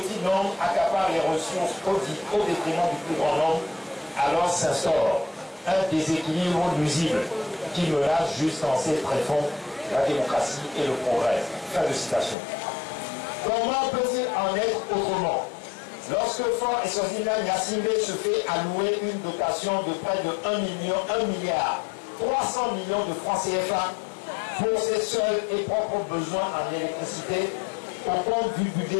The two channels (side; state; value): right; drops out; at 12.4 s